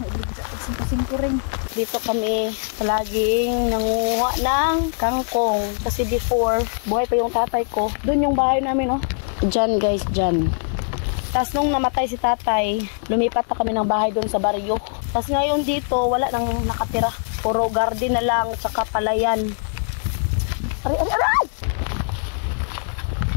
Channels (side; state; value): right; silent; digital silence